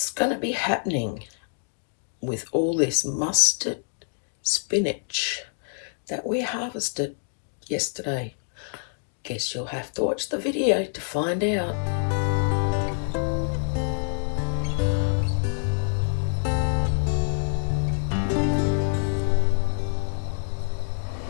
going to be happening with all this mustard spinach that we harvested yesterday? Guess you'll have to watch the video to find out.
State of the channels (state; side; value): silent; right; digital silence